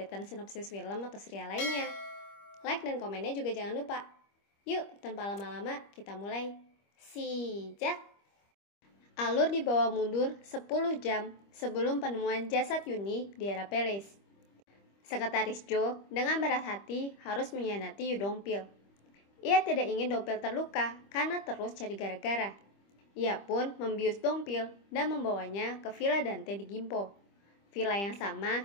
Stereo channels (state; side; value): late; right; 25 ms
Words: sinopsis film atau serial lainnya. Like dan komennya juga jangan lupa. Yuk, tanpa lama-lama, kita mulai. Sijak! Alur dibawa mundur 10 jam sebelum penemuan jasad Yuni di era Palace. Sekretaris Jo dengan berat hati harus mengkhianati Yu Dongpil. Ia tidak ingin Dongpil terluka karena terus cari gara-gara. Ia pun membius Dongpil dan membawanya ke Villa Dante di Gimpo, villa yang